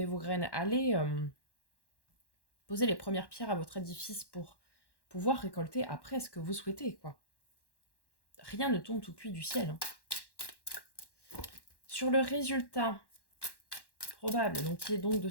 vos graines, allez poser les premières pierres à votre édifice pour pouvoir récolter après ce que vous souhaitez, quoi. Rien ne tombe tout cuit du ciel. Hein. Sur le résultat probable, donc qui est donc de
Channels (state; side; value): late; right; 1.1 ms